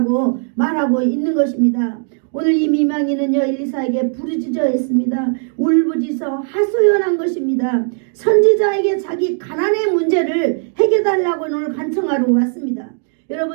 말하고 있는 것입니다. 오늘 이 미망이는요 엘리사에게 부르짖어 했습니다. 울부짖어 하소연한 것입니다. 선지자에게 자기 가난의 문제를 해결달라고 오늘 간청하러 왔습니다.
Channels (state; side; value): silent; left; 55 dB below the other